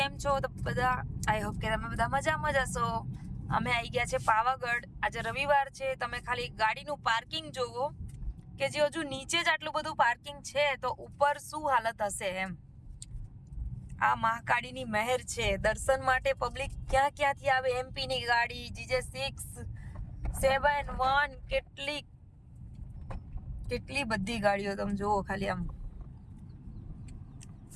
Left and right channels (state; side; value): identical; both; correlation 1.00